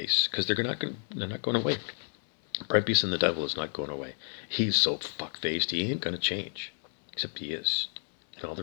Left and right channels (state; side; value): silent; right; 57 dB below the other